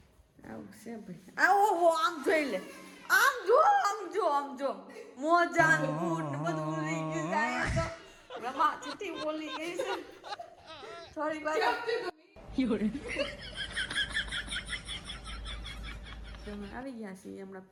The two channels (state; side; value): identical; both; correlation 1.00